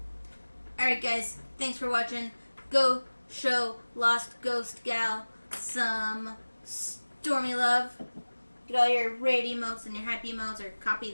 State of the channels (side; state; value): both; inverted; correlation -1.00